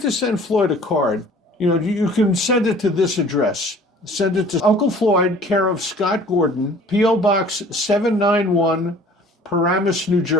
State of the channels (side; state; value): both; normal; correlation 0.50